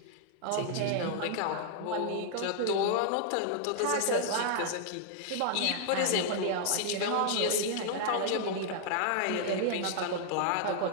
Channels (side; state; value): both; different; correlation 0.00